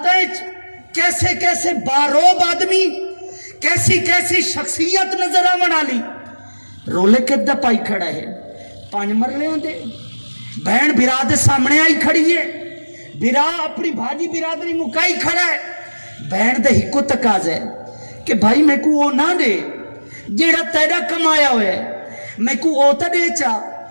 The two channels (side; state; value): both; inverted; correlation -1.00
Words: کیسے کیسے باروب آدمی کیسی کیسی شخصیت نظر آون والی رولے کدا پائی کھڑا ہے، 5 مرلے ہوندے، بہن برا دے سامنے آئی کھڑی ہے، برا اپنی بھاجی برادری مکائی کھڑا ہے، بہن دے ہکو تقاضا ہے کہ بھائی میں کو وہ نہ دے جیڑا تیرا کمایا ہویا ہے، میں کو وہ تا دے چا